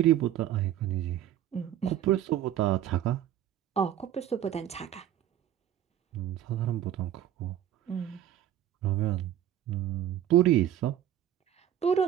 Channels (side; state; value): left; quieter; 11.1 dB